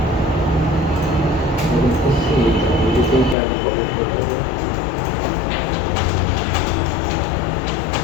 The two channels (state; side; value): drops out; right; at 3.4 s